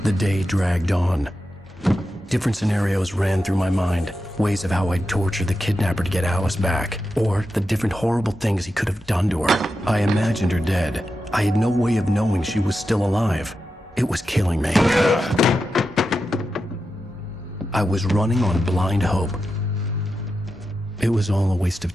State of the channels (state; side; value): normal; both; correlation 0.89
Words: The day dragged on. Different scenarios ran through my mind. Ways of how I'd torture the kidnapper to get Alice back. Or the different horrible things he could have done to her. I imagined her dead. I had no way of knowing she was still alive. It was killing me. I was running on blind hope. It was all a waste of